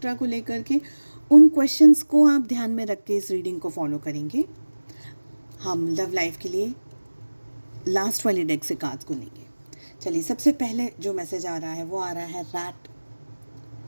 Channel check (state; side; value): inverted; both; correlation -1.00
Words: को लेकर के, उन क्वेश्चंस को आप ध्यान में रख के इस रीडिंग को फॉलो करेंगे। हम लव लाइफ के लिए लास्ट वाले डेक से कार्ड्स को लेंगे। चलिए, सबसे पहले जो मैसेज आ रहा है वो आ रहा है rat.